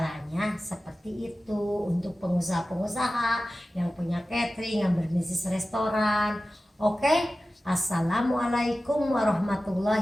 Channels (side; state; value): both; normal; correlation 0.95